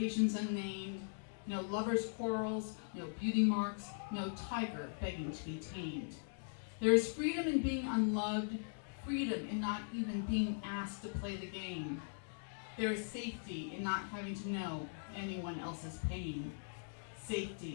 unnamed. No lovers' quarrels, no beauty marks, no tiger begging to be tamed. There is freedom in being unloved, freedom in not even being asked to play the game. There is safety in not having to know anyone else's pain.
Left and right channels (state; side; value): silent; right; digital silence